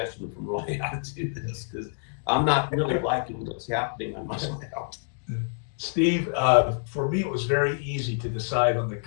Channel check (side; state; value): right; silent; digital silence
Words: from Roy how to do this, because I'm not really liking what's happening on my layout. Steve, for me, it was very easy to decide on the